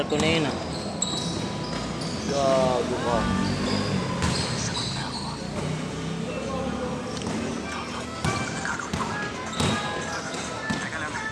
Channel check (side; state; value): both; identical; correlation 1.00